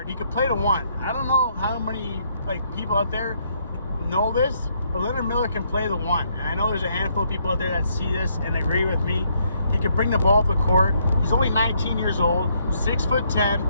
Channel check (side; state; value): both; inverted; correlation -0.72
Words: He could play the 1. I don't know how many, people out there know this, but Leonard Miller can play the 1. And I know there's a handful of people out there that see this and agree with me. He can bring the ball up the court. He's only 19 years old,